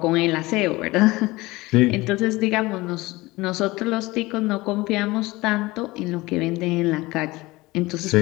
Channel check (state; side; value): quieter; right; 20.7 dB